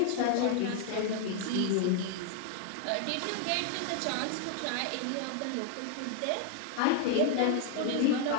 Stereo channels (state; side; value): different; both; correlation 0.00